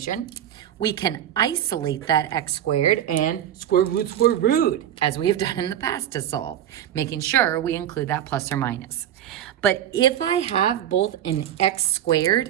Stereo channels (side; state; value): left; quieter; 10.8 dB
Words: we can isolate that x squared and square root, as we have done in the past to solve, making sure we include that plus or minus. But if I have both an x